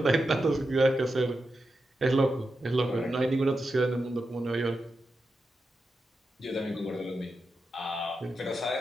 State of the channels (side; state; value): both; normal; correlation 0.89